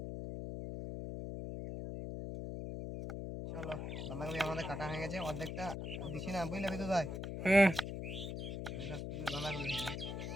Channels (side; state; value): left; noise; hum, 5 dB below the sound